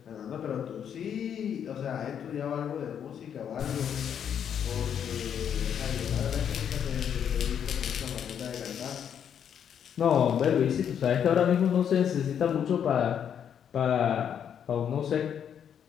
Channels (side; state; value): right; quieter; 8.6 dB